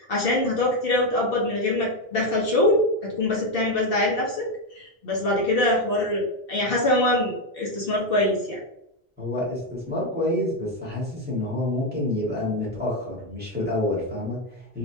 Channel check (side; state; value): both; normal; correlation 0.06